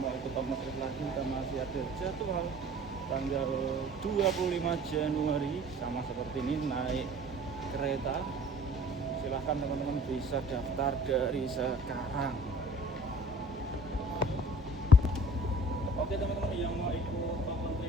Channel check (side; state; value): both; normal; correlation 0.49